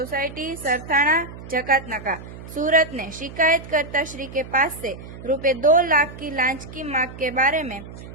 सरथाना जकातनाका सूरत ने शिकायतकर्ता श्री के पास से ₹2 लाख की लांच की मांग के बारे में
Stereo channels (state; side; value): noise; right; hum, 14 dB below the sound